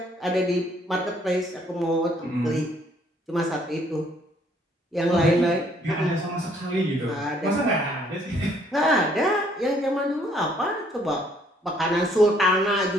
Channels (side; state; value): both; normal; correlation 0.64